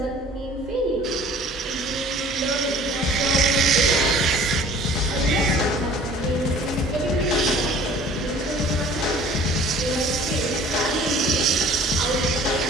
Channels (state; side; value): normal; both; correlation 0.49